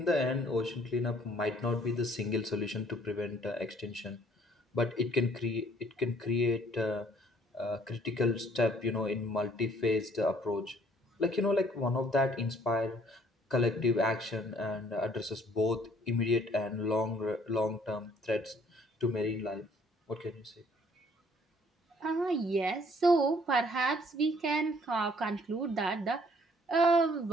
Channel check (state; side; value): normal; both; correlation 0.60